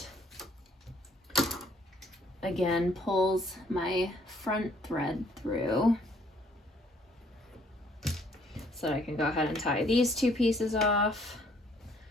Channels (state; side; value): normal; both; correlation 0.63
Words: again pulls my front thread through so that I can go ahead and tie these two pieces off,